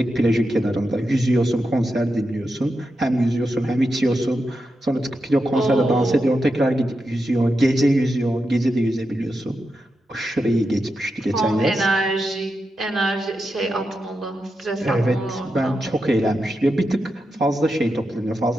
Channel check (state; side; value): normal; both; correlation 0.88